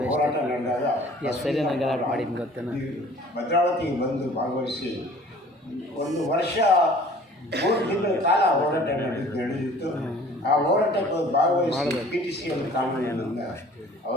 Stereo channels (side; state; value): both; normal; correlation 0.49